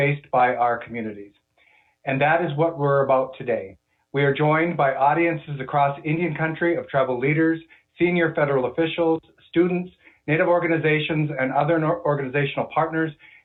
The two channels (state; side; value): identical; both; correlation 1.00